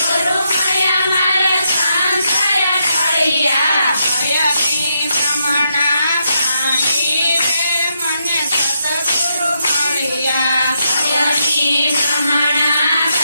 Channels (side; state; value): both; inverted; correlation -0.80